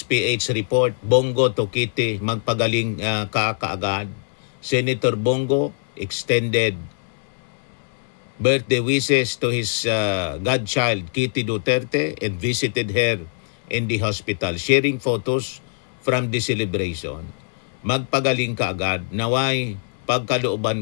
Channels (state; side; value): silent; right; digital silence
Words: PH report, Bongo to Kitty, magpagaling kaagad. Senator Bongo extended birthday wishes to his godchild, Kitty Duterte, and visited her in the hospital, sharing photos from the celebration. Magpagaling kaagad, naway